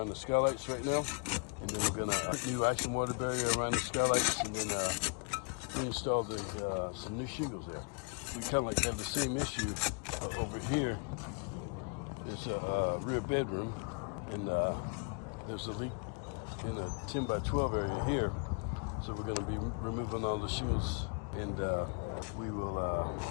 the skylights right now. And then we're going to put new ice and water barrier around the skylights, and then install some new shingles there. We kind of have the same issue over here. It's a rear bedroom, and there's a leak in a 10 by 12 area here. So we're going to be removing all the shingles, and we will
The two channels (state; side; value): quieter; right; 37.3 dB